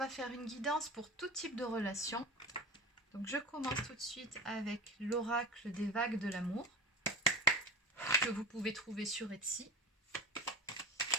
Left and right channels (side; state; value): both; normal; correlation 0.32